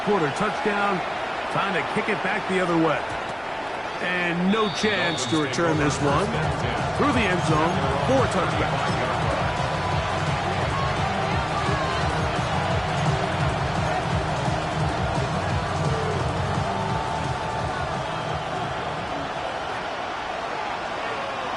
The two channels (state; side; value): identical; both; correlation 1.00